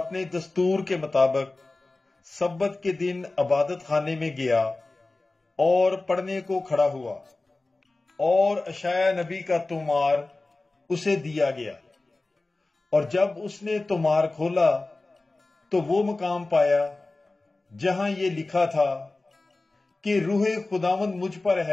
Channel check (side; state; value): right; quieter; 3.2 dB